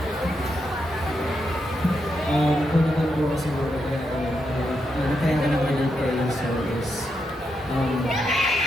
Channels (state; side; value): normal; both; correlation 0.83